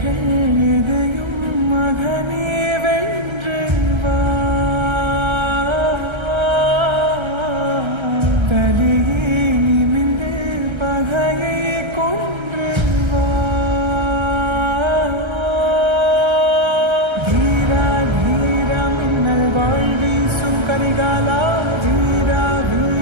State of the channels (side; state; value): left; late; 1.3 ms